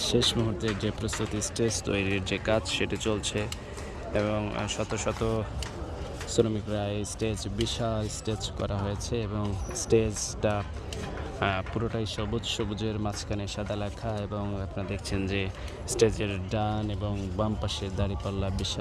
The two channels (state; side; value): identical; both; correlation 1.00